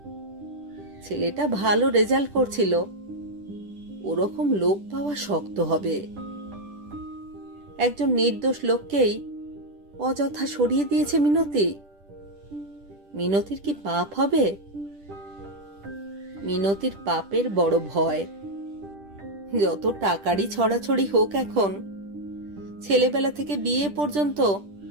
ছেলেটা ভালো রেজাল্ট করছিল, ওরকম লোক পাওয়া শক্ত হবে। একজন নির্দোষ লোককেই অযথা সরিয়ে দিয়েছে মিনতি। মিনতির কি পাপ হবে? মিনতির পাপের বড় ভয়। যত টাকারই ছড়াছড়ি হোক, এখন ছেলেবেলা থেকে বিয়ে পর্যন্ত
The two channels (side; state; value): left; late; 10 ms